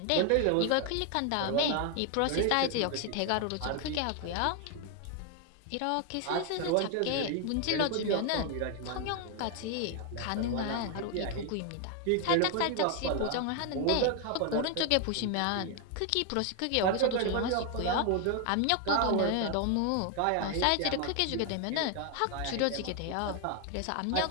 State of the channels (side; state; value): both; different; correlation 0.00